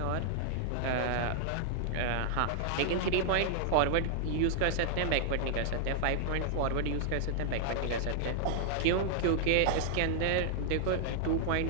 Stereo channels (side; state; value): both; different; correlation -0.01